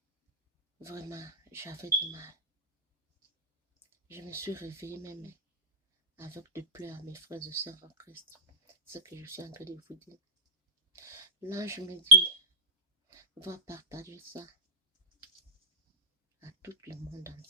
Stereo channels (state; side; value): normal; both; correlation -0.10